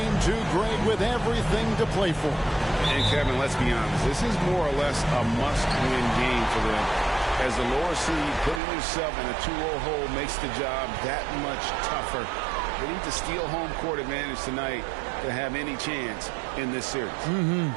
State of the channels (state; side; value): drops out; left; at 8.6 s